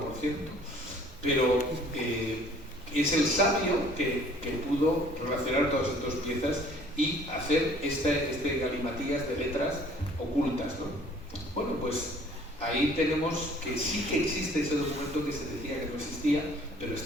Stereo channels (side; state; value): both; normal; correlation 0.54